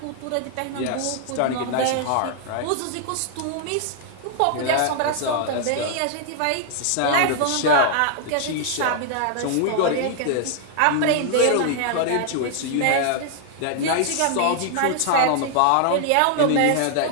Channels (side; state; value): both; different; correlation 0.00